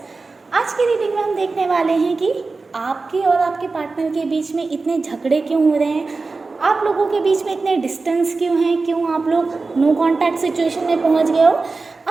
आज की रीडिंग में हम देखने वाले हैं कि आपके और आपके पार्टनर के बीच में इतने झगड़े क्यों हो रहे हैं, आप लोगों के बीच में इतने डिस्टेंस क्यों हैं, क्यों आप लोग नो कांटेक्ट सिचुएशन में पहुंच गए हो।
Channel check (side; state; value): left; quieter; 3.9 dB